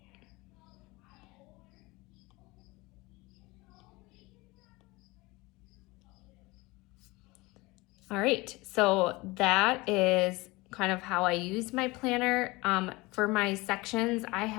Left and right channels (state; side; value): quieter; right; 22.8 dB